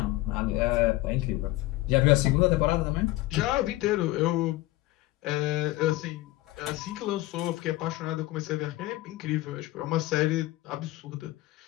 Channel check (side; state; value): right; quieter; 18.2 dB